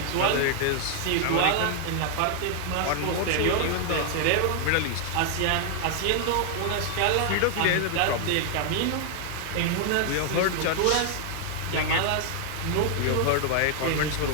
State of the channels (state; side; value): different; both; correlation 0.00